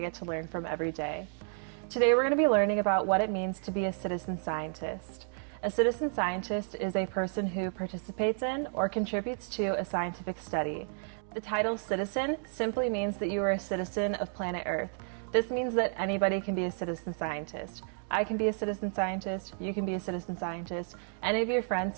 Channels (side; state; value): left; silent; 57 dB below the other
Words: get to learn from every day. Today we're going to be learning about what it means to be a citizen scientist. A citizen scientist is a person who participates in or contributes to a scientific study. The title citizen simply means that you are a citizen of planet Earth. This means that anybody can be a citizen scientist. I can be a citizen scientist, you can be a citizen scientist, any of your friends,